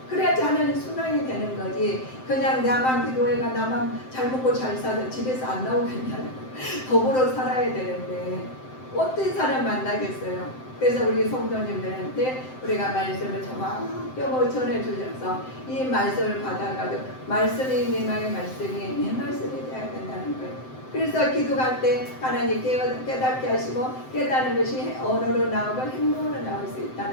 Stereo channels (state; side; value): late; right; 7.7 ms